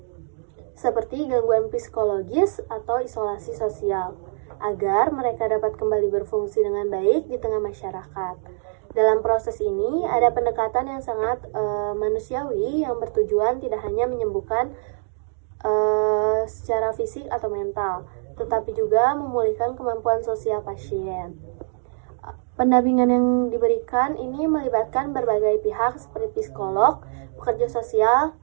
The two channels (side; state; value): left; silent; 63 dB below the other